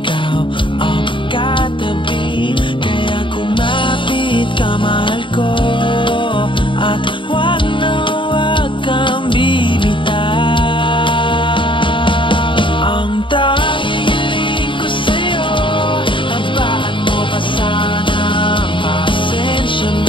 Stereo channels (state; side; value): late; right; 0.24 ms